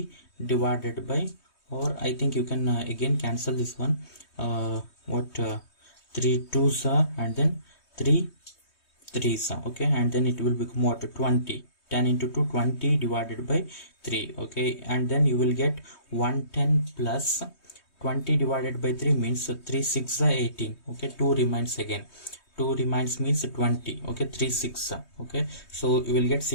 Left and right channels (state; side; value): late; right; 3.2 ms